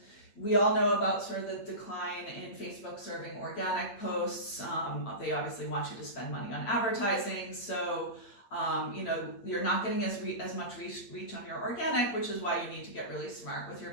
We all know about sort of the decline in Facebook serving organic posts. They obviously want you to spend money on advertising, so you're not getting as much reach on your organic, which is why you need to get really smart with your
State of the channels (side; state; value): right; late; 8.8 ms